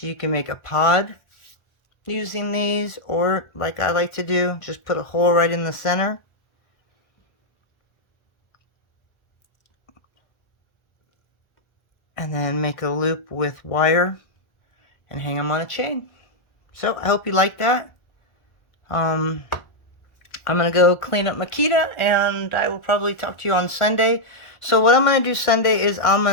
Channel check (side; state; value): right; late; 1.4 ms